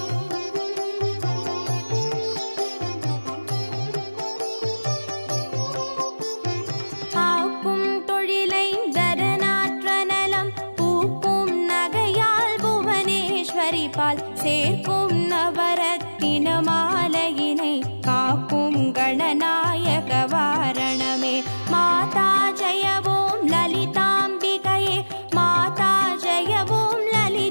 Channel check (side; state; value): both; inverted; correlation -1.00